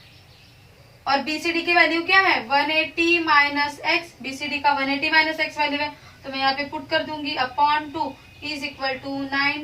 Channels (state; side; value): identical; both; correlation 1.00